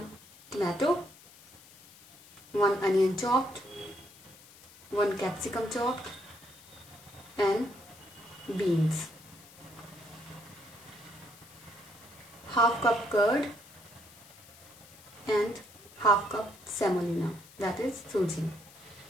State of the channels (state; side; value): noise; left; hiss, 22 dB below the sound